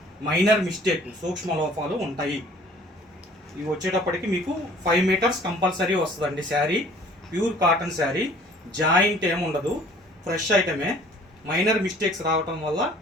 minor mistake సూక్ష్మ లోపాలు ఉంటాయి. ఇవి వచ్చేటప్పటికి మీకు 5 మీటర్స్ కంపల్సరీ వస్తుందండి sari. Pure cotton sari, joint ఏముండదు, ఫ్రెష్ ఐటమే. మైనర్ మిస్టేక్స్ రావటం వల్ల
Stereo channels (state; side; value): normal; both; correlation 0.53